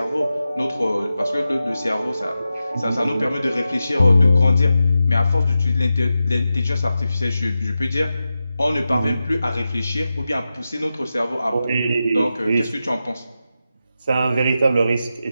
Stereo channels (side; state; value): both; inverted; correlation -0.91